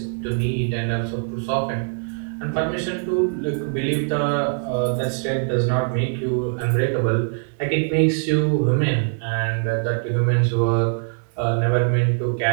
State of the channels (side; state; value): left; silent; digital silence